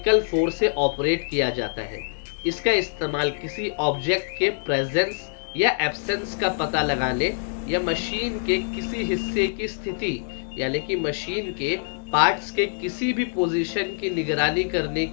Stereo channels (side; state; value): right; silent; digital silence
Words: फोर्स से ऑपरेट किया जाता है। इसका इस्तेमाल किसी ऑब्जेक्ट के प्रेजेंस या एब्सेंस का पता लगाने या मशीन के किसी हिस्से की स्थिति, यानी कि मशीन के पार्ट्स के किसी भी पोजीशन की निगरानी करने